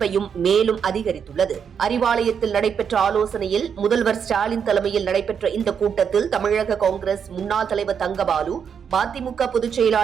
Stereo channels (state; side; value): quieter; left; 7.2 dB